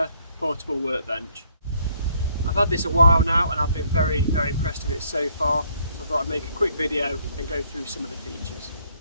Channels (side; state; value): both; inverted; correlation -0.67